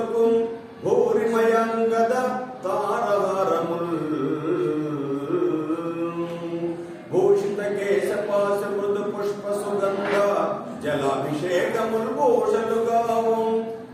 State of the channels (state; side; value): identical; both; correlation 1.00